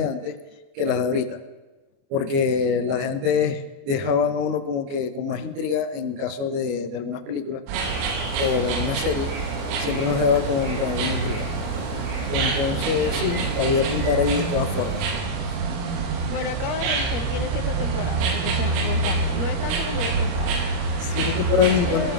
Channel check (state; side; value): late; left; 29 ms